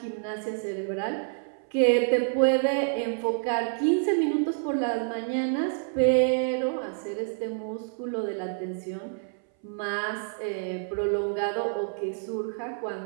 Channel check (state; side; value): silent; left; 59 dB below the other